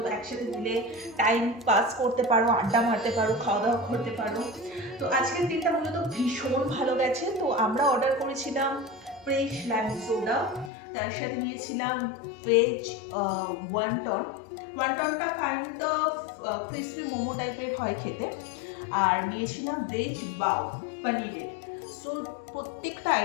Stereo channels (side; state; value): right; drops out; at 10.7 s